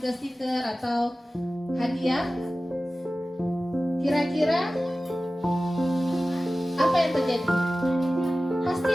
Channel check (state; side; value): normal; both; correlation 0.96